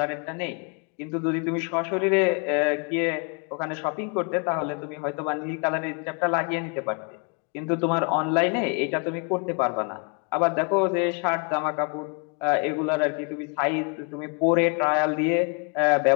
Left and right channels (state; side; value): quieter; right; 35.8 dB